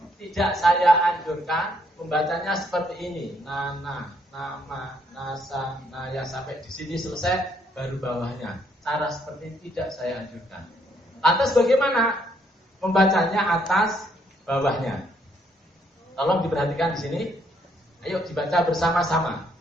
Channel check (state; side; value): normal; both; correlation 0.70